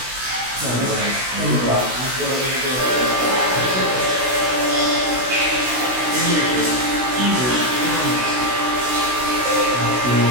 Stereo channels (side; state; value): left; late; 16 ms